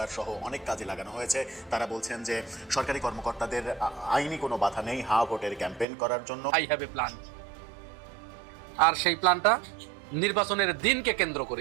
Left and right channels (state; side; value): drops out; left; at 5.9 s